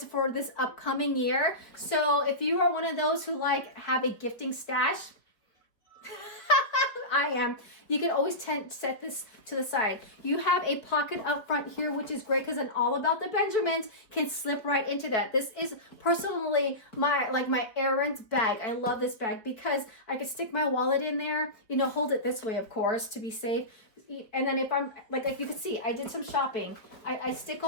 for this upcoming year. So if you are one of those who have a gifting stash, I am. You can always set this to the side. You have a pocket up front here, which is great because an All About the Benjamins can slip right into that. This is personally my errands bag. I love this bag because I can stick my wallet in there, hold it this way, of course, to be safe. And then if I'm, like you can see, I did some shopping. I stick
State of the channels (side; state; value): right; late; 4.3 ms